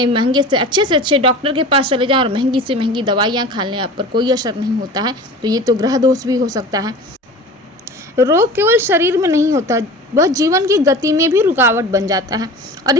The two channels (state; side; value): normal; both; correlation 0.37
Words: महंगे से अच्छे डॉक्टर के पास चले जाएं और महंगी से महंगी दवाइयाँ खा लें, आप पर कोई असर नहीं होता है, तो ये तो ग्रह दोष भी हो सकता है। रोग केवल शरीर में नहीं होता, वह जीवन की गति में भी रुकावट बन जाता है और